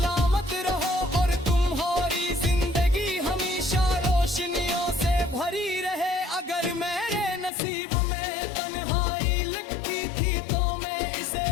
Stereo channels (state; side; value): drops out; right; at 7.5 s